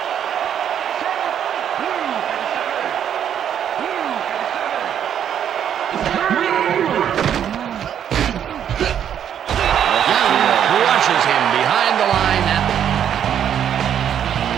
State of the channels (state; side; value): quieter; left; 9.3 dB